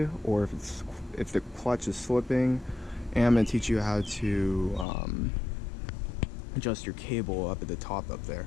or if the clutch is slipping, and I'm going to teach you how to adjust your cable up at the top up there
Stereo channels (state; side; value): drops out; right; at 4.9 s